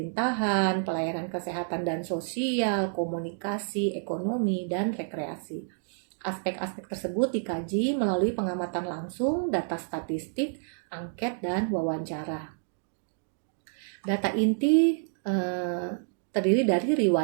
pelayanan kesehatan dan sosial, komunikasi, ekonomi, dan rekreasi. Aspek-aspek tersebut dikaji melalui pengamatan langsung, data statistik, angket, dan wawancara. Data inti terdiri dari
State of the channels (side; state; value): left; silent; digital silence